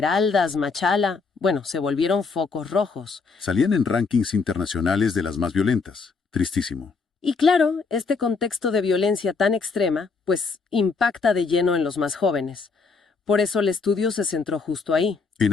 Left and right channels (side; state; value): right; quieter; 4.6 dB